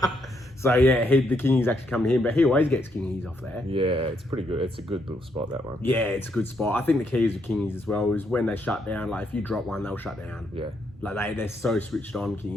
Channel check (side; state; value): both; normal; correlation 0.76